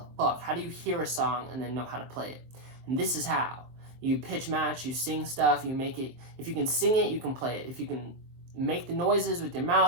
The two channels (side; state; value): left; late; 23 ms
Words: fuck? How do you hear a song and then know how to play it? And this is how. You pitch match, you sing stuff, you make it. If you can sing it, you can play it. If you can make the noises with your